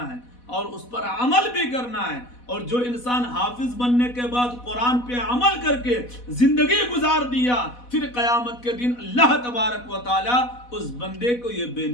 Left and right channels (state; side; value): late; right; 4.1 ms